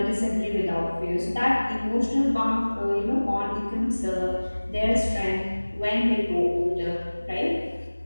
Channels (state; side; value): inverted; both; correlation -1.00